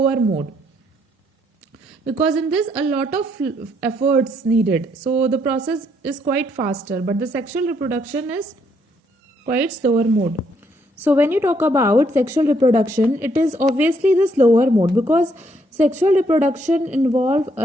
mode, because in this a lot of efforts needed. So the process is quite faster, but the sexual reproduction is quite slower mode. So when you talk about sexual reproduction, it is obviously the slower mode, because sexual reproduction involves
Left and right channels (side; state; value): both; normal; correlation 0.71